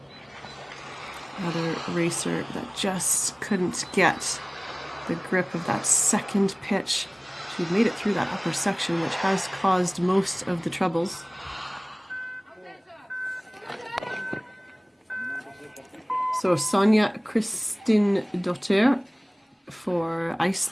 another racer that just couldn't get the grip of that second pitch. She made it through that upper section, which has caused most of the troubles. So Sonja Kristin Dottir for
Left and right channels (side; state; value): both; normal; correlation 0.98